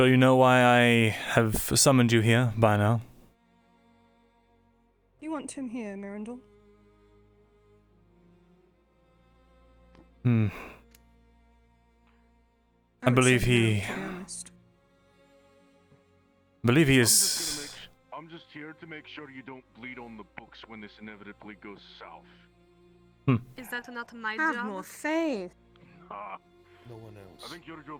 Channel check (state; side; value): identical; both; correlation 1.00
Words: you know why I have summoned you here by now. You want him here, Myrindal? I believe would say no, he... to be honest. believe he I'm is... just here to make sure you don't bleed on the books when this inevitably goes south. Is that not my Have job? more faith. Ah, No one else. I think your